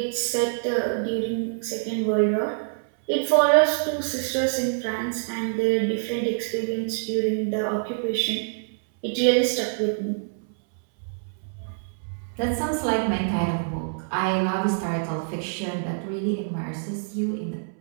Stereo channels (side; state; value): left; silent; 61 dB below the other